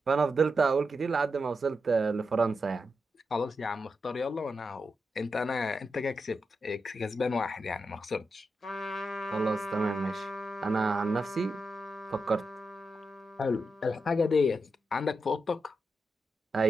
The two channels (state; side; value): normal; both; correlation 0.86